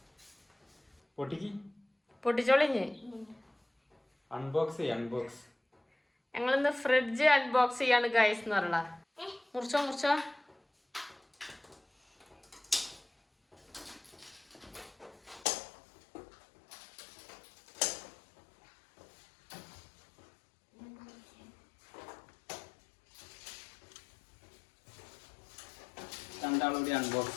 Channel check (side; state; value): right; drops out; at 15.5 s